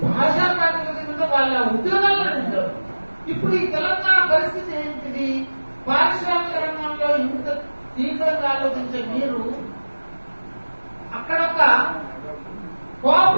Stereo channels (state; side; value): inverted; both; correlation -1.00